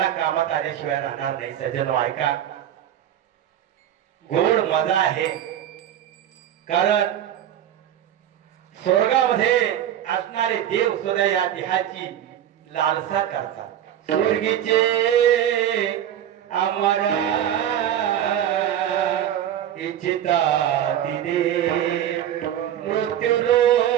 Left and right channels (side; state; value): left; quieter; 10.9 dB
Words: कामात आल्याशिवाय राहणार नाही. सज्जन ऐका, गोड मजा आहे. कारण स्वर्गामध्ये असणारे देव सुद्धा या देहाची लालसा करतात. स्वर्गीचे आम्हाला इच्छिता तिने मृत्यू